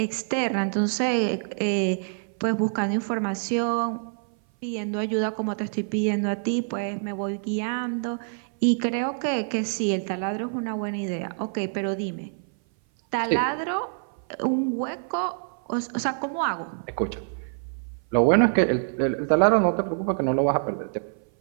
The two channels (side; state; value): left; silent; 58 dB below the other